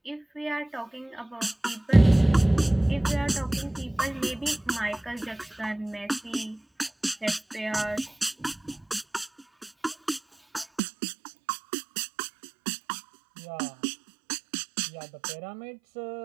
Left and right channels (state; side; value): drops out; left; at 10.8 s